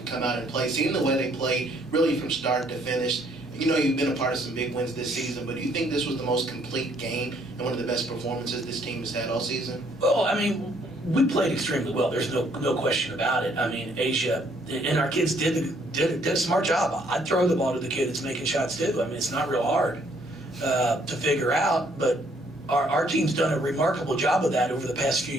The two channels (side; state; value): both; normal; correlation 0.66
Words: come out and play. Seeing the way they played, really from start to finish, you know you've been a part of some big wins this season, but do you think this was the most complete game and one of the best performances this team has had all season? Well, I mean, we played extremely well. There's no question about it. I mean, Asia, and our kids did a smart job. I'd throw the ball to the kid that's making shots too. I mean, it's not real hard to figure out, but our team's done a remarkable job of that over the past few